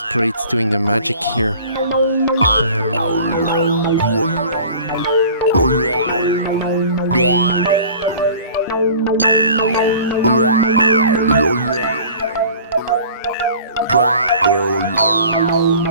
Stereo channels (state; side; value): inverted; both; correlation -0.45